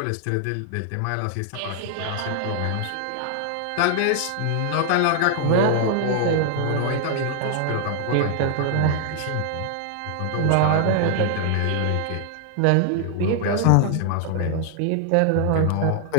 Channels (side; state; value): both; different; correlation 0.00